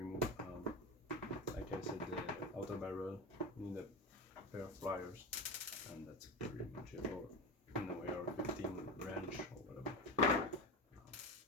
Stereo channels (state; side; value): normal; both; correlation 0.22